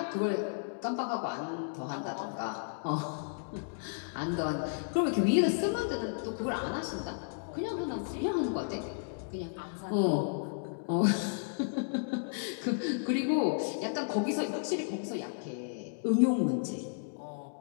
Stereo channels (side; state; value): right; silent; digital silence